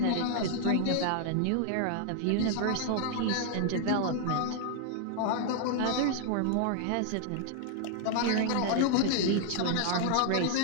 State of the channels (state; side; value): different; both; correlation 0.00